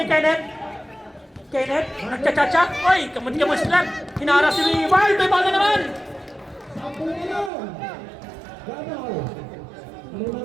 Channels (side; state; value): left; drops out; at 7.5 s